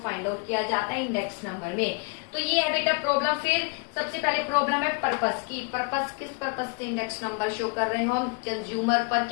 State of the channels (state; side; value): quieter; right; 34.7 dB